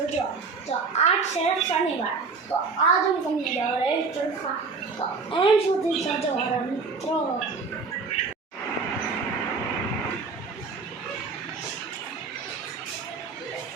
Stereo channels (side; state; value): left; quieter; 4.6 dB